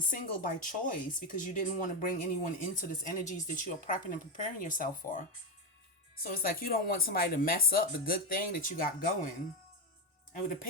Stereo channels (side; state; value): both; normal; correlation 0.10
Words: by choice because you didn't want to bring anyone into this energies that you are prepping and preparing yourself for. So it's like you don't want somebody to mess up the good thing that you got going. And with the